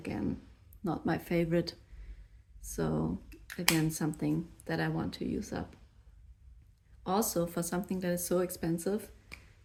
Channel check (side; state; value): both; identical; correlation 1.00